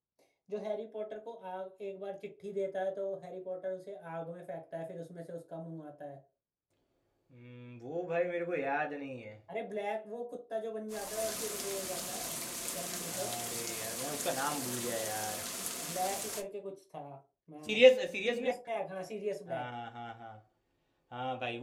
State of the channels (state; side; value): identical; both; correlation 1.00